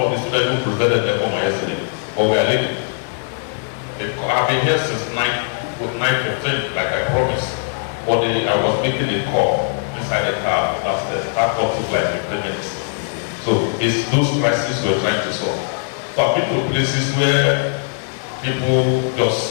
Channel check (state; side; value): silent; right; 66 dB below the other